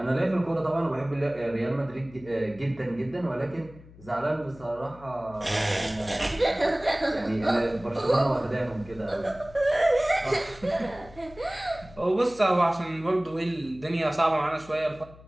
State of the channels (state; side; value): noise; left; hum, 21 dB below the sound